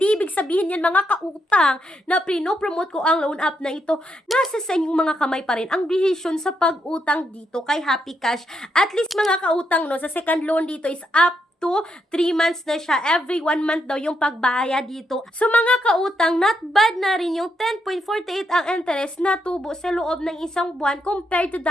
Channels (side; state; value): both; normal; correlation 0.80